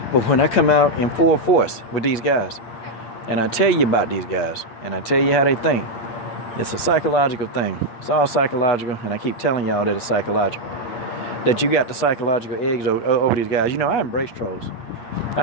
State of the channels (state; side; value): late; right; 8.3 ms